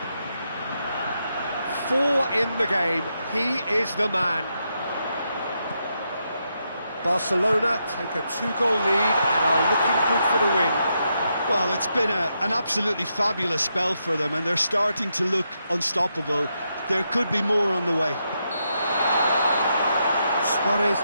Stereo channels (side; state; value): both; inverted; correlation -0.82